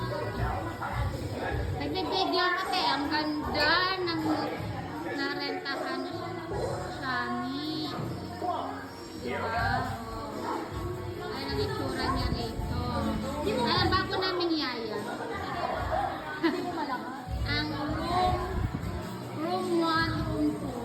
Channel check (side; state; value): both; identical; correlation 1.00